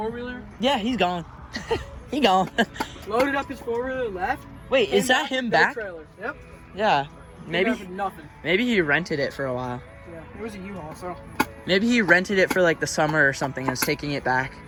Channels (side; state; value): both; identical; correlation 1.00